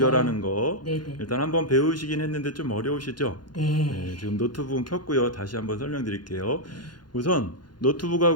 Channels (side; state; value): right; late; 0.71 ms